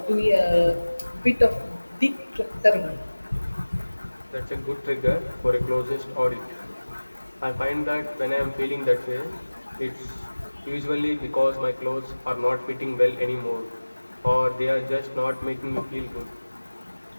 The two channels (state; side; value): inverted; both; correlation -1.00